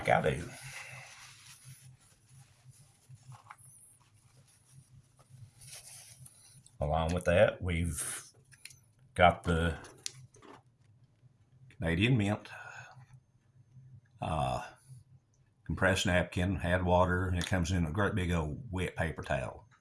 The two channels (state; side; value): identical; both; correlation 1.00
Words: I do. Along with that, we've got the Canadian Mint compressed napkin, had water, and it comes in a great big old wet paper towel.